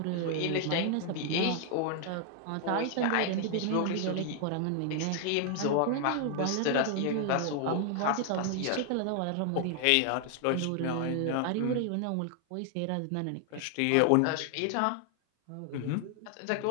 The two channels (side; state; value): both; different; correlation 0.00